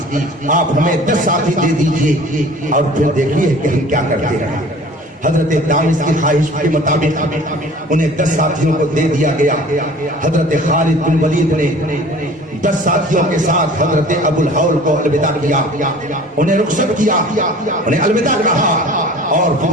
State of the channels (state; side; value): normal; both; correlation 0.46